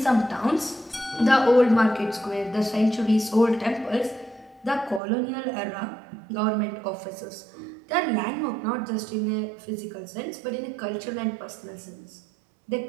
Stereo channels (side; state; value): left; drops out; at 5.0 s